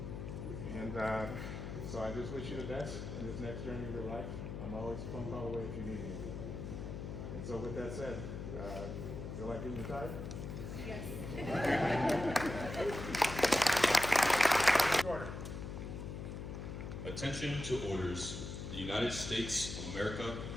And so I just wish you the best in this next journey of your life. I'm always a phone call away if you need anything. And so with that said, feel like being retired? Yes. Order. Attention to orders. The United States of America,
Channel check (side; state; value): left; noise; hum, 6 dB below the sound